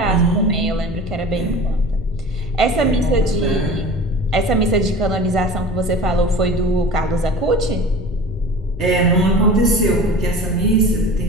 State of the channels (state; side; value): normal; both; correlation 0.38